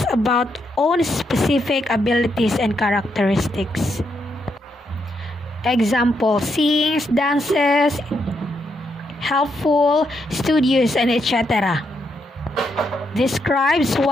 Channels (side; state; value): both; normal; correlation 0.79